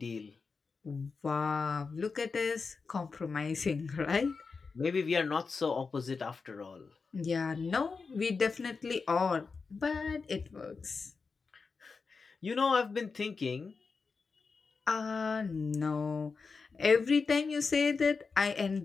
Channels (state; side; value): quieter; right; 4.8 dB